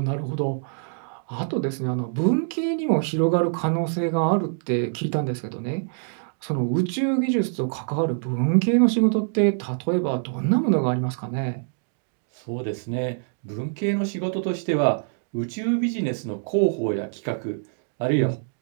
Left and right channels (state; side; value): silent; left; digital silence